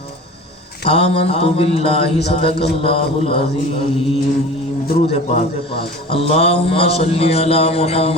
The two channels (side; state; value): both; normal; correlation 0.37